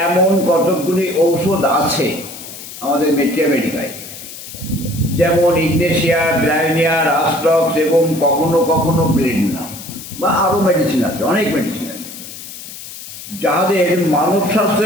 এমন কতকগুলি ঔষধ আছে আমাদের মেডিকায়, যেমন ইগনেশিয়া, ব্রায়োনিয়া, রাস্টক্স এবং কখনো কখনো ব্লেডনা, বা আরও মেডিসিন আছে, অনেক মেডিসিন আছে, যাদের মানব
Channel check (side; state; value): left; noise; hiss, 13 dB below the sound